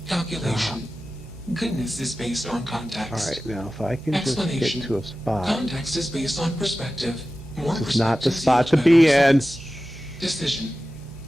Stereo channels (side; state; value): right; noise; hum, 21 dB below the sound